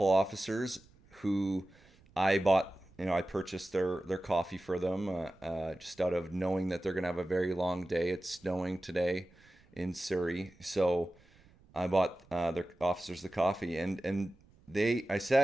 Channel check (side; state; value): right; noise; rumble, 29 dB below the sound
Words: officers who I purchased their coffee for them just out of knowing that they're going to have a very long day. It's snowing today in Surrey. So I bought their officers the coffee and I